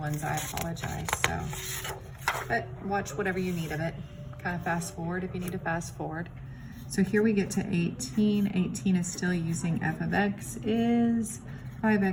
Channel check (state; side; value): identical; both; correlation 1.00